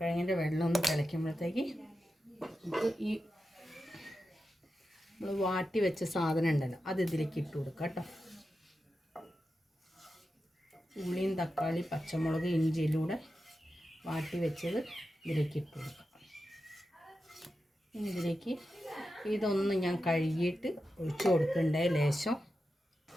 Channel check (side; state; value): both; normal; correlation 0.90